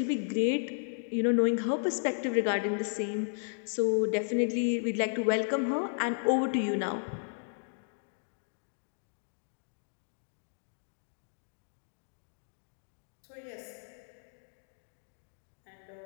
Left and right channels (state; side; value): silent; right; digital silence